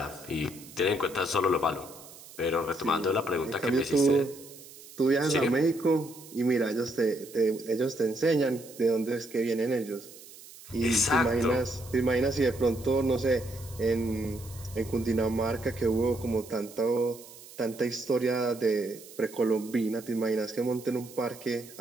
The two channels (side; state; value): right; noise; hiss, 19 dB below the sound